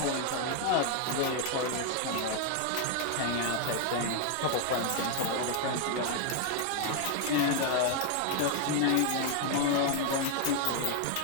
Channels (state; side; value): different; both; correlation 0.00